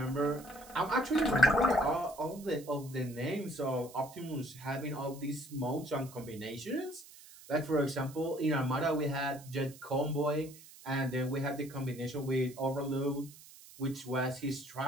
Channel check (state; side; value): noise; right; hiss, 19 dB below the sound